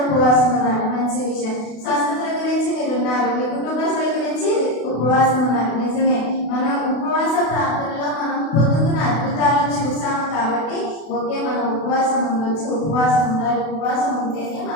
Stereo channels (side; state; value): right; late; 32 ms